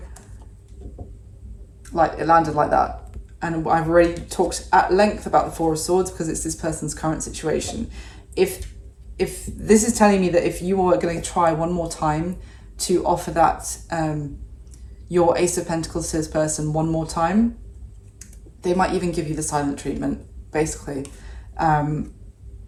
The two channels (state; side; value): identical; both; correlation 1.00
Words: like, it landed like that. And I've already talked at length about the Four of Swords because it's this person's current situation. If this is telling me that if you are going to try one more time to offer that, your Ace of Pentacles to this person one more time. They might even give you the silent treatment, basically.